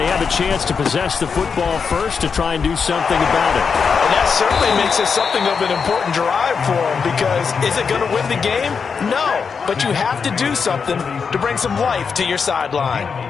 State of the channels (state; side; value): quieter; right; 5.8 dB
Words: have a chance to possess the football first to try and do something about it. And that certainly makes it something of an important drive for them because is it going to win the game? No, but you have to do something to bring some life to your sideline.